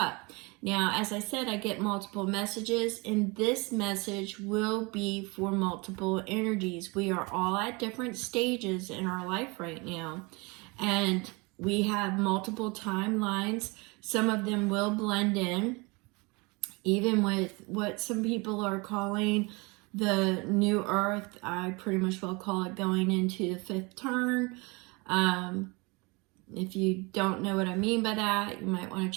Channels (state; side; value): quieter; left; 27.4 dB